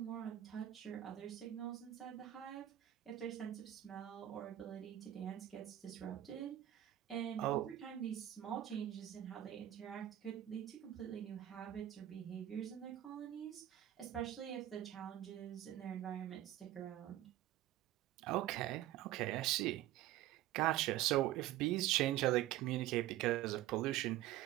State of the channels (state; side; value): quieter; left; 13.5 dB